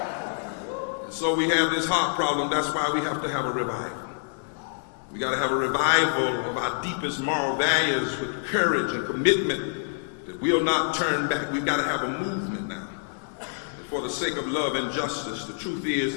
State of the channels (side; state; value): right; silent; 58 dB below the other